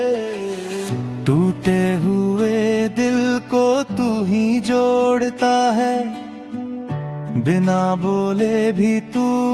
टूटे हुए दिल को तू ही जोड़ता है, बिना बोले भी तू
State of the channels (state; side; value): identical; both; correlation 1.00